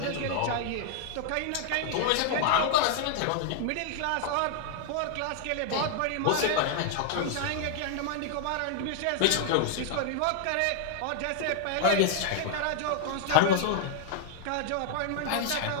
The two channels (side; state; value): both; different; correlation 0.00